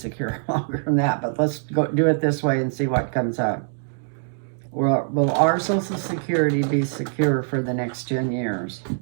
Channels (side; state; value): left; silent; digital silence